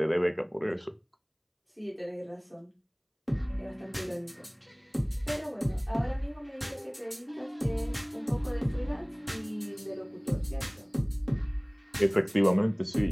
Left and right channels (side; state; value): both; identical; correlation 1.00